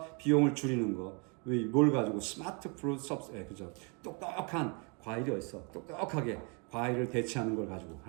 비용을 줄이는 거. 뭘 가지고 스마트 프루트 섭스 예 그죠? 똑똑한 과일이 어딨어? 똑똑하게 과일을 대체하는 걸 가지고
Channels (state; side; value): quieter; left; 34.6 dB